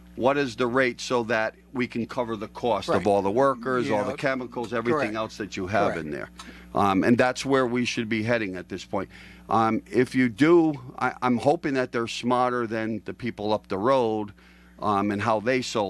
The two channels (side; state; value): both; identical; correlation 1.00